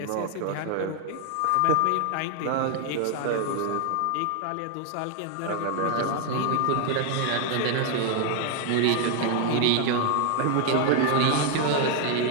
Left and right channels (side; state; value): both; different; correlation 0.00